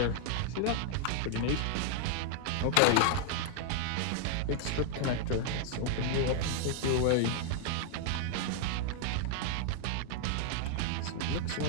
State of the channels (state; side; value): different; both; correlation 0.00